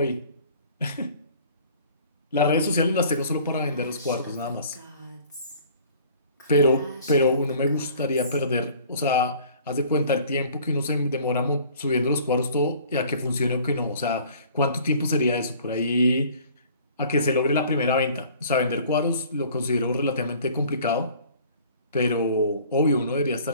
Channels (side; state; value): both; inverted; correlation -0.51